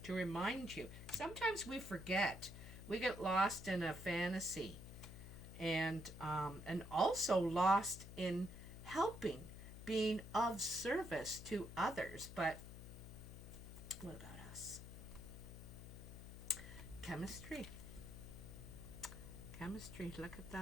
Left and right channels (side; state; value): left; noise; hum, 12 dB below the sound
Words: to remind you. Sometimes we forget. We get lost in a fantasy. And also lost in helping, being of service to others. But what about us? Chemistry. chemistry. Look at